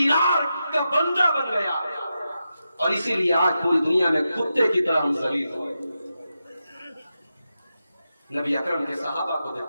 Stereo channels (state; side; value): inverted; both; correlation -0.89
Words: کا بندہ بن گیا، اور اسی لیے آج پوری دنیا میں کتے کی طرح ہم ذلیل ہوئے۔ نبی اکرم کے صحابہ کو